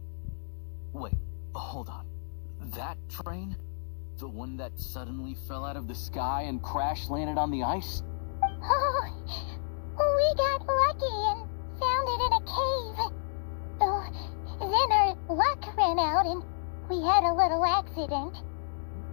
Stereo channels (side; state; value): right; silent; digital silence